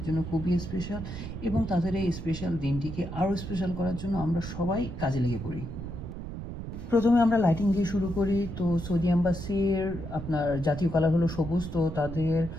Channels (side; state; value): right; noise; rumble, 8 dB below the sound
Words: জন্য খুবই স্পেশাল, এবং তাদের এই স্পেশাল দিনটিকে আরও স্পেশাল করার জন্য আমরা সবাই কাজে লেগে পড়ি। প্রথমে আমরা লাইটিং দিয়ে শুরু করি। তো সৌদি এম্বাসির আপনার জাতীয় কালার হলো সবুজ, তো তাদের